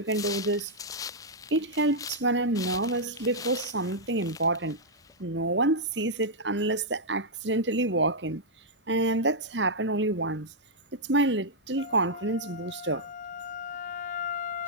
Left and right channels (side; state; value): both; normal; correlation -0.06